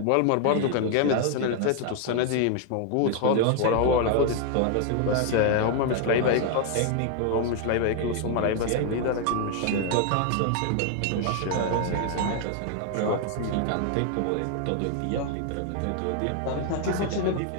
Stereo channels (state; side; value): different; both; correlation 0.00